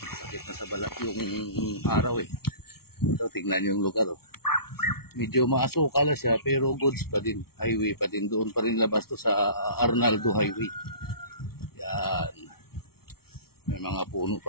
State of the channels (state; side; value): late; right; 0.94 ms